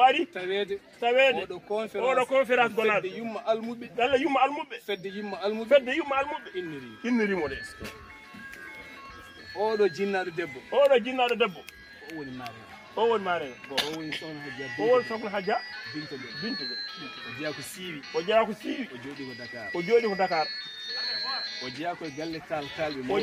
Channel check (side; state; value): both; identical; correlation 1.00